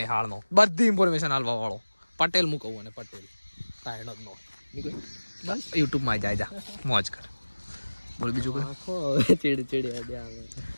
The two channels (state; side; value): inverted; both; correlation -1.00